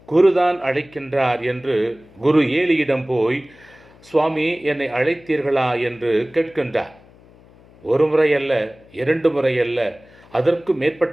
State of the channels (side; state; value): left; noise; hum, 26 dB below the sound